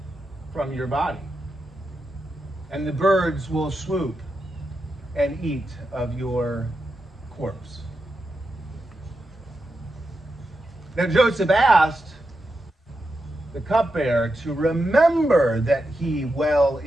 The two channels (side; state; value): both; normal; correlation 0.87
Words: from your body, and the birds will swoop and eat of your corpse." Now Joseph asked the cupbearer to remember that he well